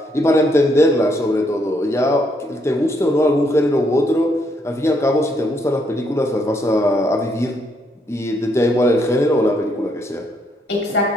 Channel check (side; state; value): both; normal; correlation 0.73